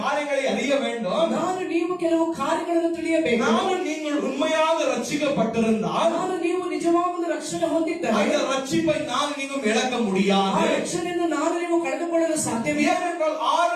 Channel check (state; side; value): identical; both; correlation 1.00